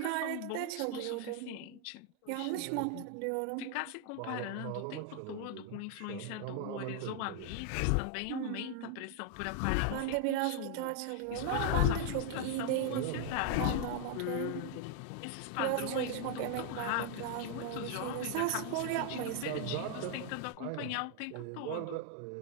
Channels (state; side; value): different; both; correlation 0.00